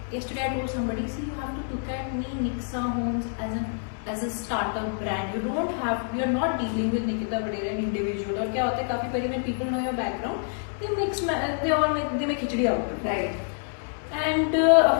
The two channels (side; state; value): right; silent; 60 dB below the other